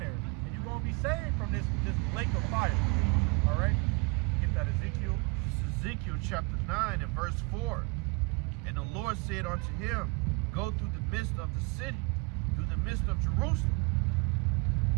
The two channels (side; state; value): left; quieter; 29.0 dB